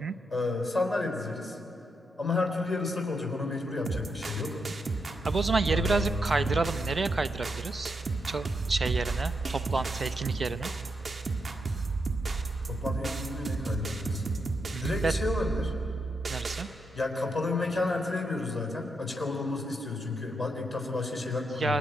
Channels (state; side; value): normal; both; correlation 0.82